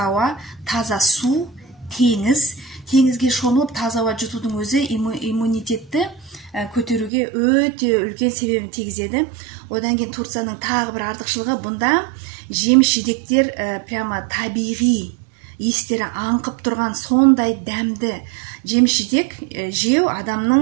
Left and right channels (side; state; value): left; drops out; at 7.1 s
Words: ауа, таза су, теңіз. Теңізге шомылып таза ауа жұтудың өзі иммунитетті көтеруге өте үлкен себебін тигізеді. Одан кейін Турцияның тағы бір артықшылығы, бұнда жеміс-жидектер прямо табиғи, естері аңқып тұрған сондай дәмді жеміс-жидек жеу